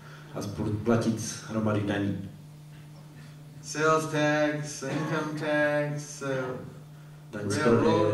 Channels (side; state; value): both; identical; correlation 1.00